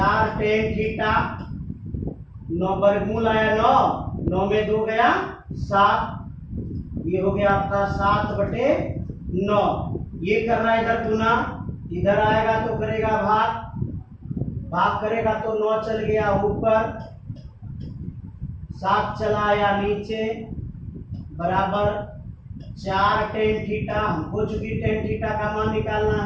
टेन थीटा, 9 वर्गमूल आया 9, 9 में 2 गया 7, ये हो गया आपका 7/9। ये कर रहा है इधर गुना, इधर आएगा तो करेगा भाग, भाग करेगा तो 9 चल गया ऊपर, 7 चला आया नीचे, बराबर 4 टेन थीटा। हमको चूंकि टेन थीटा का मान निकालना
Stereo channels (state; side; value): identical; both; correlation 1.00